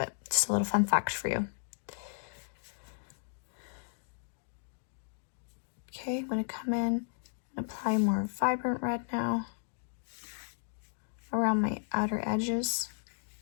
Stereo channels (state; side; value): silent; right; digital silence